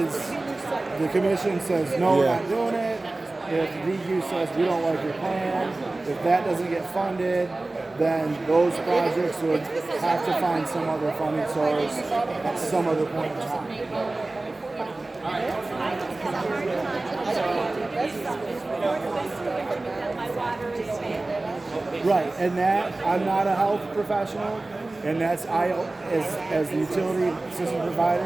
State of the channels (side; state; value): left; quieter; 3.0 dB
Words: the commission says no, we're not doing it. If DQ says we don't like your plan, if that doesn't get funded, then those projects would have to find some other funding source at some other point in time. Right, and that, I'm not a health professional, and that's as the utility system